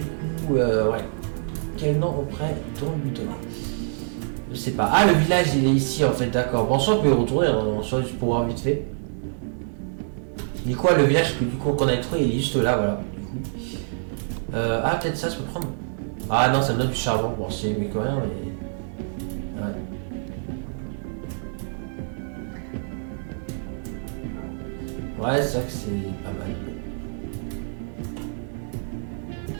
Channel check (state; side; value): silent; left; digital silence